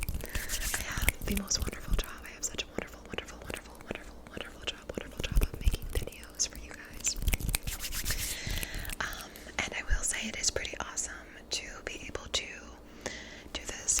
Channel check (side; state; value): both; identical; correlation 1.00